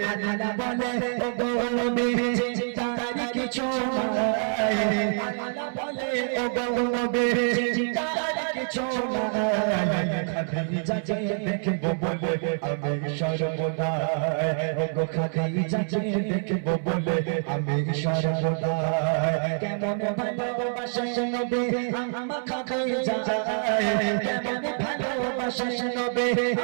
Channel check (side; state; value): left; silent; 59 dB below the other